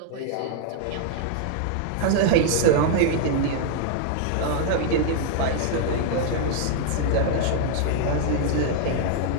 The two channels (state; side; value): different; both; correlation -0.01